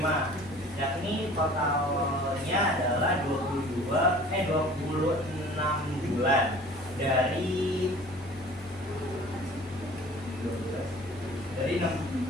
Yakni totalnya adalah 26 bulan dari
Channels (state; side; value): normal; both; correlation 0.46